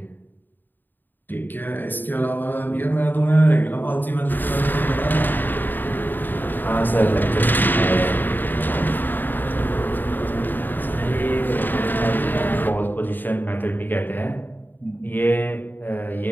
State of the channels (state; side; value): late; right; 0.091 ms